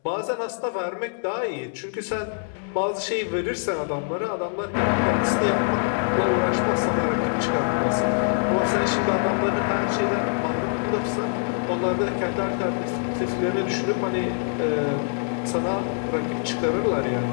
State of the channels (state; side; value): silent; right; digital silence